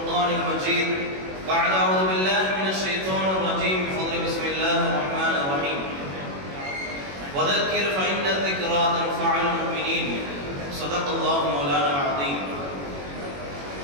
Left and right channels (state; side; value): late; left; 21 ms